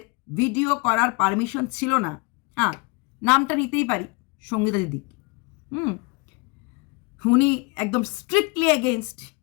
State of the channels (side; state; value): right; quieter; 28.3 dB